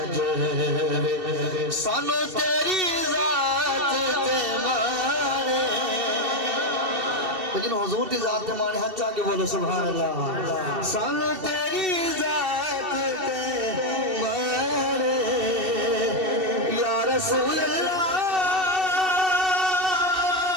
सानू तेरी जात ते माने लेकिन हुजूर की जात ते माने हाथ आके बोलो सुभान अल्लाह सानू तेरी जात ते माने या रसूल अल्लाह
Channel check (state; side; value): late; left; 2.7 ms